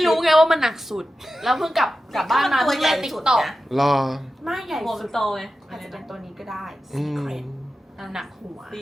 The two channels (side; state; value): both; normal; correlation 0.92